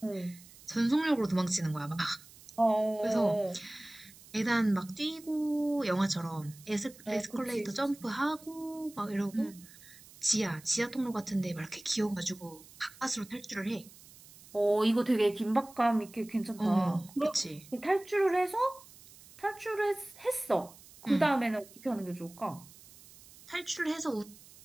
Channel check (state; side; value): noise; right; hiss, 21 dB below the sound